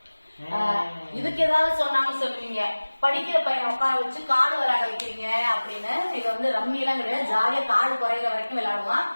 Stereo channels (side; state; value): both; inverted; correlation -1.00